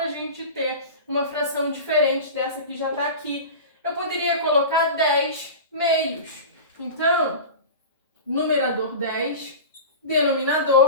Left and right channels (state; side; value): inverted; both; correlation -0.31